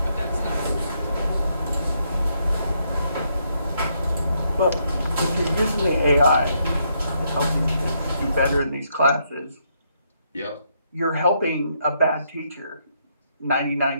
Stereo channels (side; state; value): both; inverted; correlation -0.75